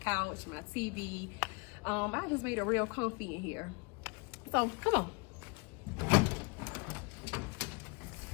couch, my TV. I just made it real comfy in here. So come on.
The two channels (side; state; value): right; quieter; 29.5 dB